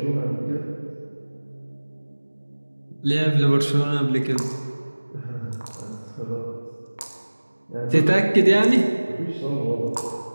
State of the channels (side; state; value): both; inverted; correlation -1.00